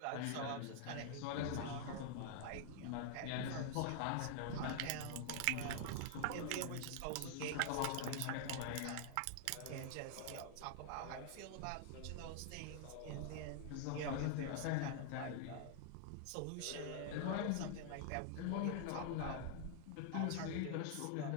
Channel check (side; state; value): both; different; correlation 0.00